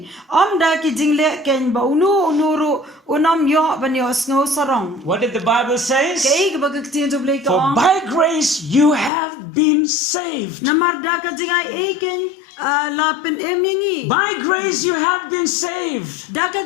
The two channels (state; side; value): drops out; right; at 9.1 s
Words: Da ki jing le ken ba unuru unam yo ban yo snow sarong. What did the Bible say? Kay ka ba ka tin to blay ka For ong. by grace you have been saved. Namar da ka Jingaiei ken la pen em yangi. By grace you have been saved. Da ka